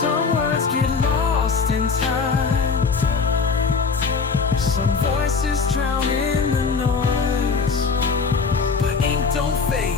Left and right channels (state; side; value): quieter; right; 5.0 dB